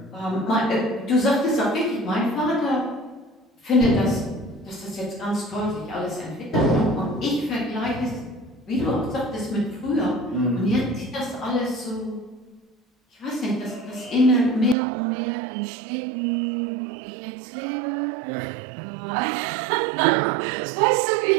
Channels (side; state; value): left; drops out; at 14.8 s